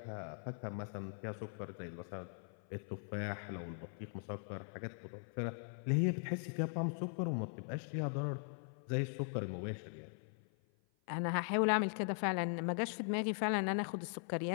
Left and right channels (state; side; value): silent; right; 51 dB below the other